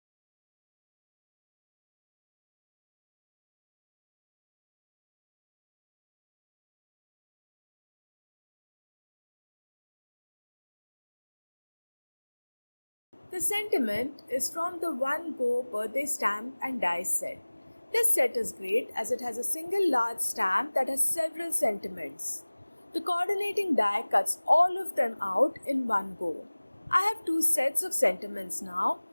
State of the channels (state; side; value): inverted; both; correlation -1.00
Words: The sentiment is from the One Go Birthday Stamp and Die set. This set is great as it has a single large stamp that has several sentiments. The coordinating die cuts all of them out in one go. I have two sets of sentiments now,